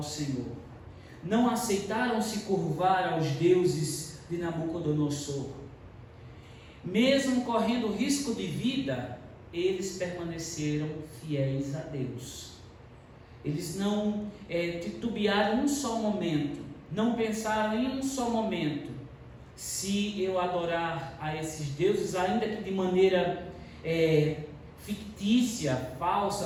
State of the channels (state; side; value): identical; both; correlation 1.00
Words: Senhor. Não aceitaram se curvar aos deuses de Nabucodonosor. Mesmo correndo risco de vida, eles permaneceram fiéis a Deus. Eles não titubearam um só momento, não pensaram em um só momento: se eu adorar a esses deuses, ainda que de maneira fictícia,